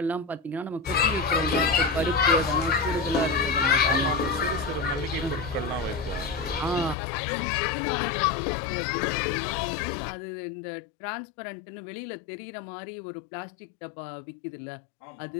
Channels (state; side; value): drops out; right; at 7.0 s